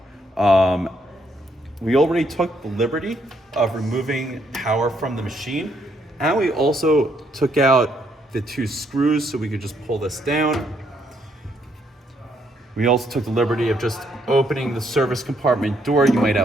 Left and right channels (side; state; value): both; normal; correlation 0.73